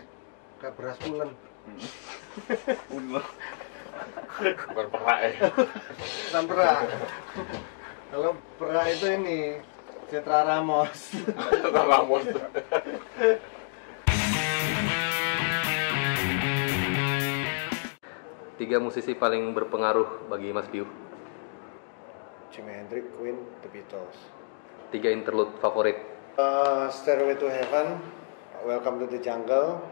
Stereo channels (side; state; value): right; silent; digital silence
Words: kayak beras ulen. Bukan perak ya. Bukan perak. Kalau perak itu ini Citra Ramos. Tiga musisi paling berpengaruh bagi Mas Piu. Jimi Hendrix, Queen, The Beatles. Tiga interlude favorit. Stairway to Heaven, Welcome to the Jungle,